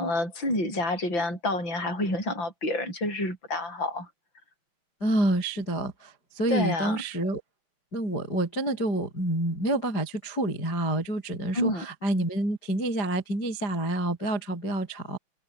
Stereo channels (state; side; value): late; right; 5.0 ms